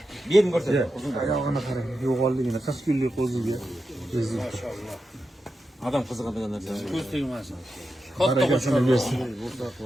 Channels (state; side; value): normal; both; correlation 0.89